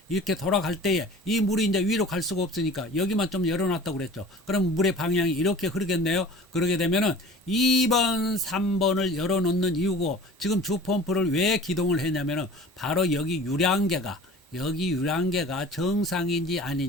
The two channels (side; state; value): both; normal; correlation 0.42